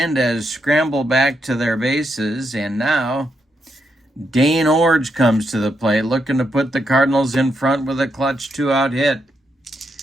scramble back to their bases. And now Dane Orge comes to the plate, looking to put the Cardinals in front with a clutch 2-out hit.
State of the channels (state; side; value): normal; both; correlation 0.81